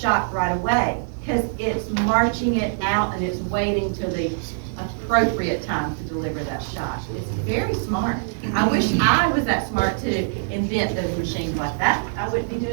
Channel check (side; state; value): left; silent; digital silence